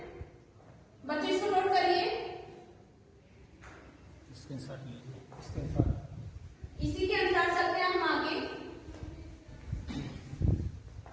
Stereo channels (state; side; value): identical; both; correlation 1.00